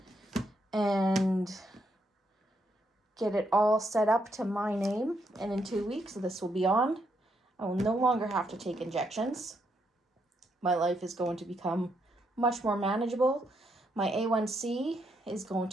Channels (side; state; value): both; normal; correlation 0.77